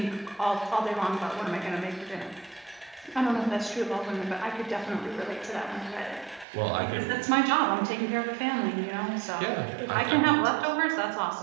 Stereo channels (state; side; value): drops out; left; at 6.5 s